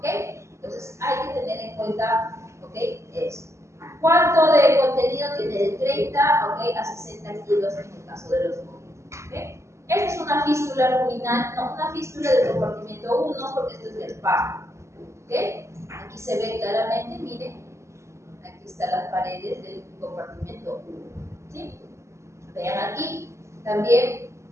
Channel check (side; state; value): left; late; 0.14 ms